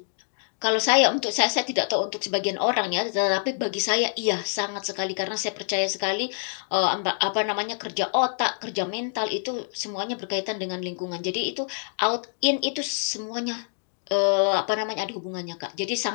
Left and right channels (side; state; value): right; silent; digital silence